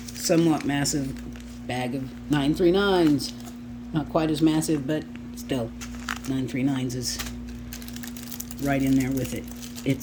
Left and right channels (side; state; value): both; identical; correlation 1.00